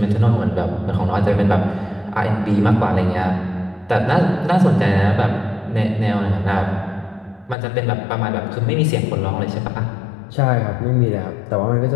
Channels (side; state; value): right; drops out; at 7.6 s